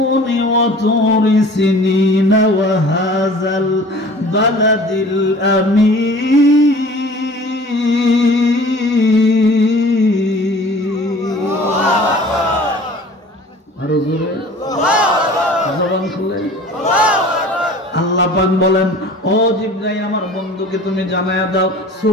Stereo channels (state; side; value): normal; both; correlation 0.45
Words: ওয়া তুরি সিনিনা ওয়া হাযাল বালাদিল আমিন। আরো জোরে জবান খুলে আল্লাহ পাক বলেন ও জিবরাইল আমার বন্ধুকে তুমি জানায়া দাও,